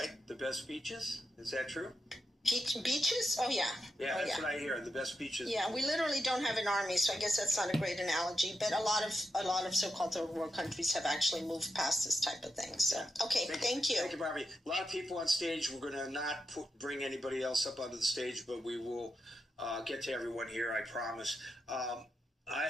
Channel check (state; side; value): normal; both; correlation 0.87